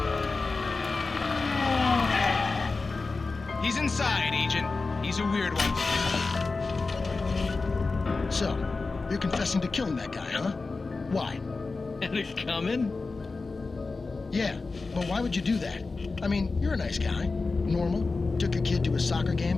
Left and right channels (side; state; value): right; quieter; 3.9 dB